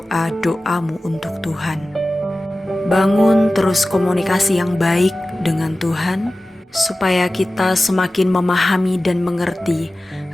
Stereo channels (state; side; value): normal; both; correlation 0.96